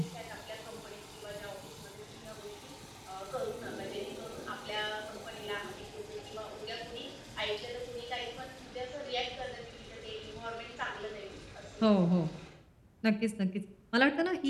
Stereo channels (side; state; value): both; identical; correlation 1.00